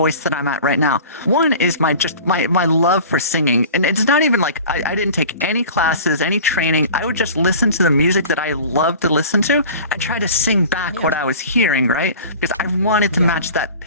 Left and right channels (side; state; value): both; inverted; correlation -0.40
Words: that I'm at right now. One is my love for singing. And it's not even I didn't take any classes, any training. I would just listen to the music that I love to listen to and try to sing back what I was hearing, right? Because I wanted to match that